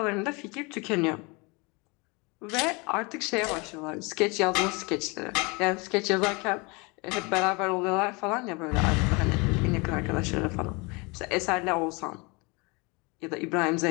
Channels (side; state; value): right; quieter; 28.3 dB